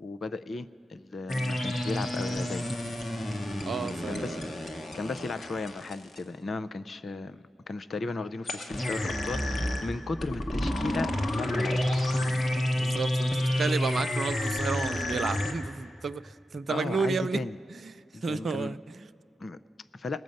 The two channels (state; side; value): normal; both; correlation 0.89